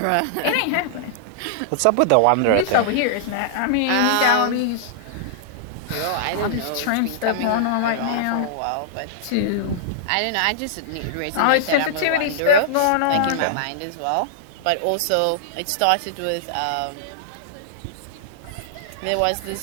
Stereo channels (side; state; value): both; different; correlation -0.01